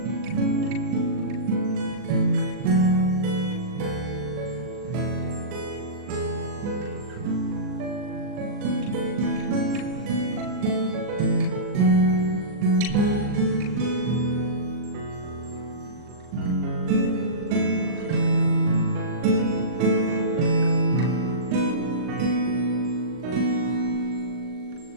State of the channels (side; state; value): left; late; 39 ms